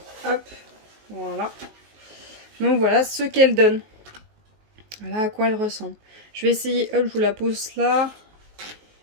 Hop, voilà. Donc voilà ce qu'elle donne. Voilà à quoi elle ressemble. Je vais essayer, hop, je vous la pose là.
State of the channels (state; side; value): late; left; 19 ms